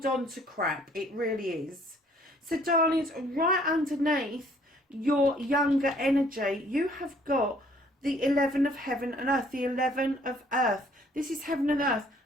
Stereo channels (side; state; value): both; normal; correlation 0.60